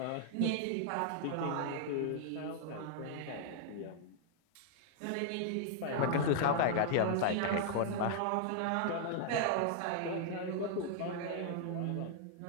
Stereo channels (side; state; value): both; different; correlation -0.01